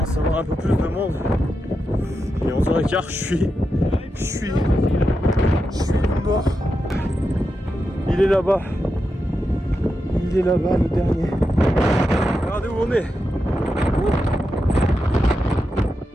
savoir un peu plus de monde. Il est 11h15, je suis mort. Il est là-bas. Il est là-bas, le dernier. Regardez où on est.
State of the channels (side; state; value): both; normal; correlation 0.88